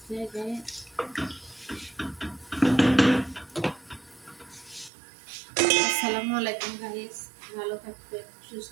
যায়। আসসালামু আলাইকুম গাইস, ভালো থাকবেন,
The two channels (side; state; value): left; drops out; at 4.9 s